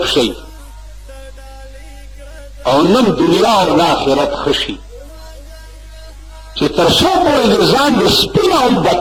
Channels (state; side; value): identical; both; correlation 1.00